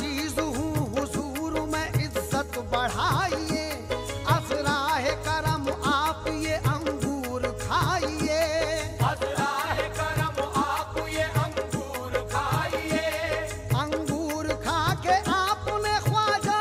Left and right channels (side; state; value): both; identical; correlation 1.00